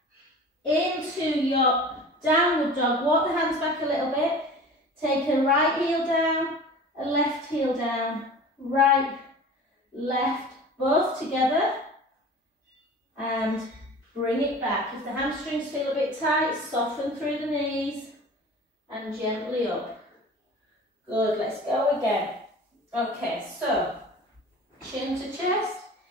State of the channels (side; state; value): both; normal; correlation 0.39